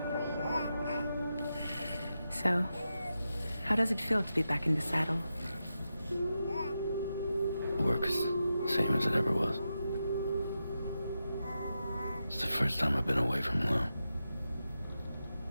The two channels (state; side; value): inverted; both; correlation -0.88